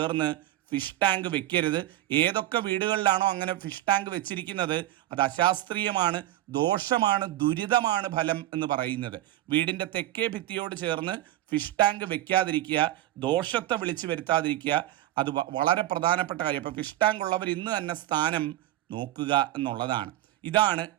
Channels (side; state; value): left; quieter; 14.3 dB